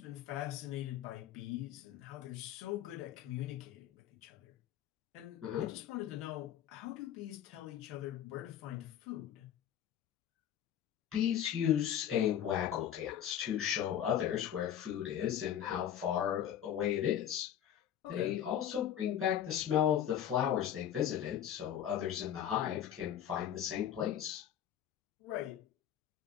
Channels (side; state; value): right; quieter; 10.3 dB